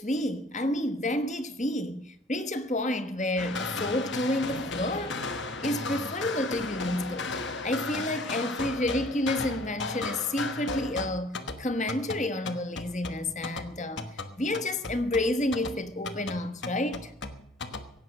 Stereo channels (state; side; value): normal; both; correlation 0.53